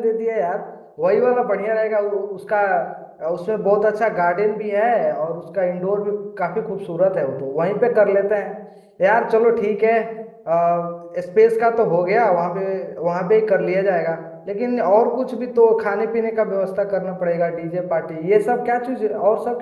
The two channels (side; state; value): both; identical; correlation 1.00